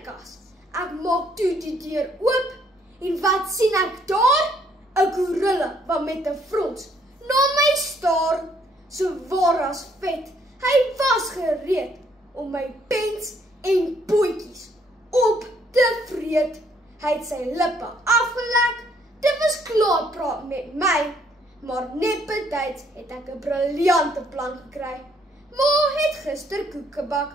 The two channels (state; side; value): normal; both; correlation 0.67